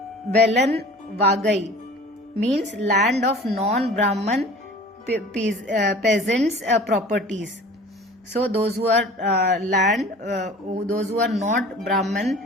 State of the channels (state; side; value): normal; both; correlation 0.43